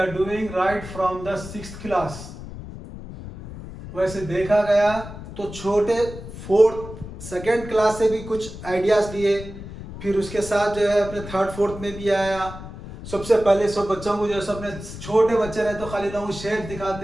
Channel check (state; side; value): noise; left; rumble, 12 dB below the sound